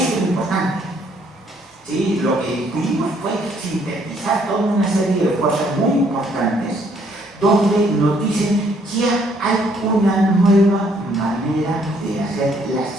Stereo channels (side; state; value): both; normal; correlation 0.66